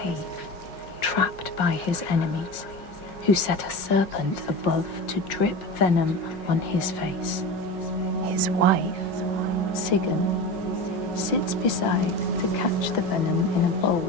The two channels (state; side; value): late; right; 5.6 ms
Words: trapped by his enemies, who set a serpent above to drip venom on his face. His wife, Sigyn, sits beside to catch the venom in a